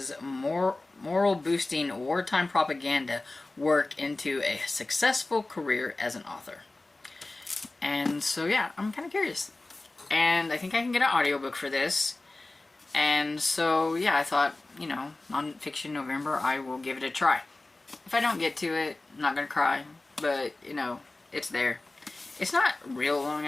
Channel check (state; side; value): quieter; right; 3.0 dB